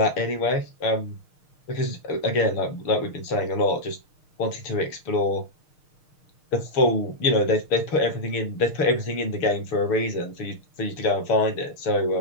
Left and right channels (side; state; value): right; late; 6.5 ms